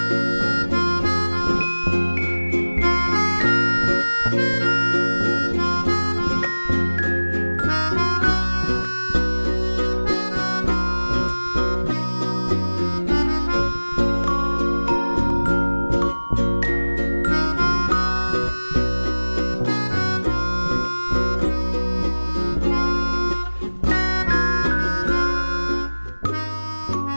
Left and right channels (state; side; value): inverted; both; correlation -1.00